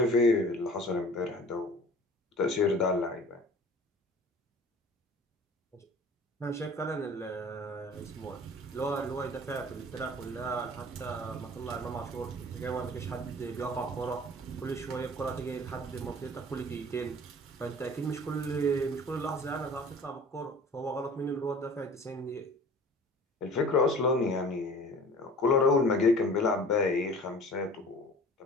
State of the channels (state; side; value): normal; both; correlation 0.45